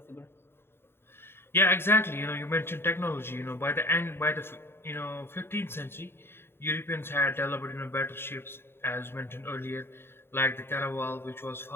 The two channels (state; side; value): late; right; 0.11 ms